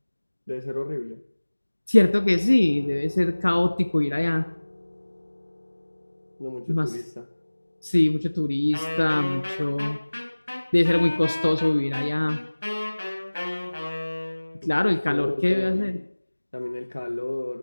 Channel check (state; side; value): inverted; both; correlation -1.00